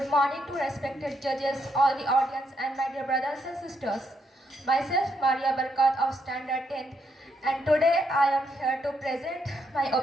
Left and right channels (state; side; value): normal; both; correlation 0.77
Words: morning to respected judges, all the audience and my dear brothers and sisters. Myself Maria Barkat of Standard 10th, and today I am here to present my